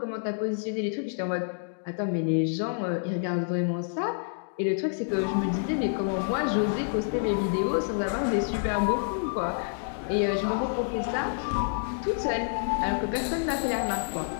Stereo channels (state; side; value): silent; right; digital silence